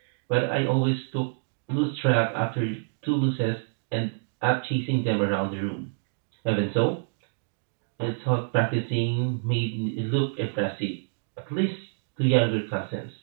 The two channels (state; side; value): silent; left; digital silence